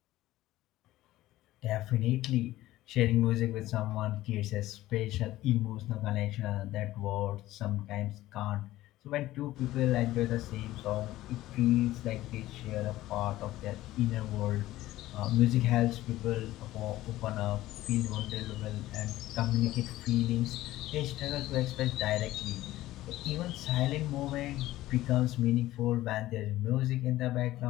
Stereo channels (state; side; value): quieter; right; 15.9 dB